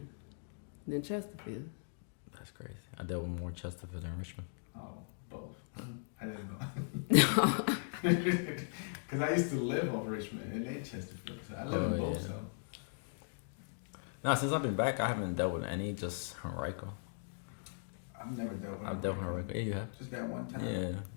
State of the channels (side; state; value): right; silent; digital silence